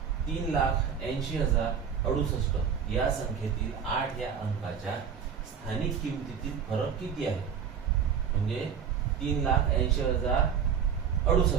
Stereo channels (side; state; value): left; quieter; 7.4 dB